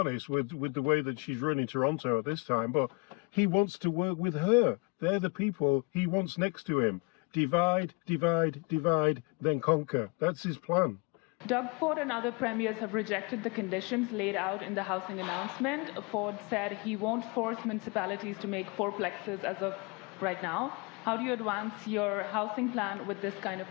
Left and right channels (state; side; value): quieter; right; 28.9 dB